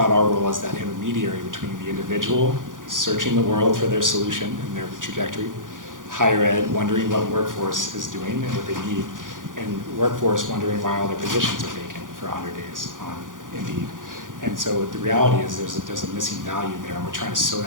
our role as that intermediary between the individual searching the world for their solution and their trajectory, higher ed wondering what workforce is doing and what they need, and workforce wondering why all their positions are vacant for 100 days on Indeed. And so the reality is there's a missing value there, and we're trying to sew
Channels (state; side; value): late; left; 0.89 ms